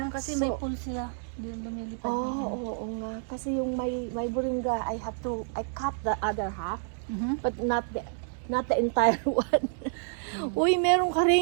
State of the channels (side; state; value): left; silent; digital silence